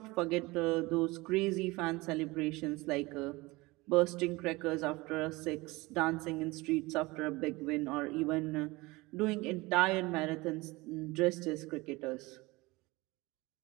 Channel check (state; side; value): quieter; left; 22.3 dB